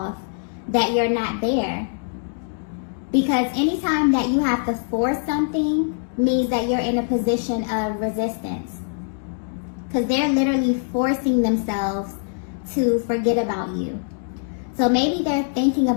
that you're not there. Because anytime that you have to force something means that you're in a position of resistance. Because they're literally forcing themselves to forget about you. So maybe they're thinking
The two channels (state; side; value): silent; right; 63 dB below the other